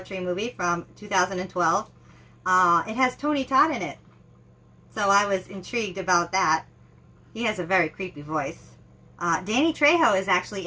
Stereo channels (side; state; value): both; identical; correlation 1.00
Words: Tree movie from 2012. It has Tony Todd in it, so I was intrigued about that. He has a very creepy voice. Danny Trejo is actually